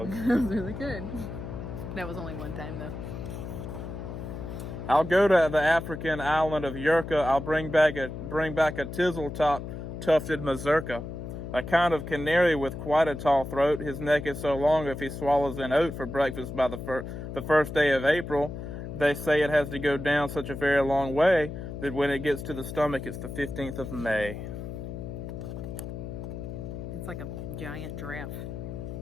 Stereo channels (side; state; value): left; noise; hum, 8 dB below the sound